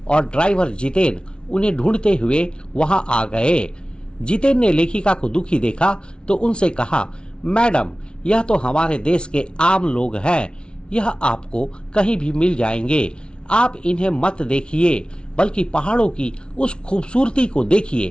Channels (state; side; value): late; right; 0.056 ms